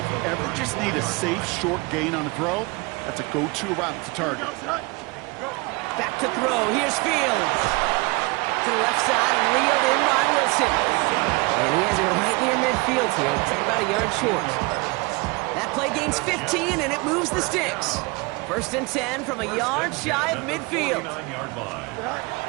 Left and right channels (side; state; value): left; quieter; 26.3 dB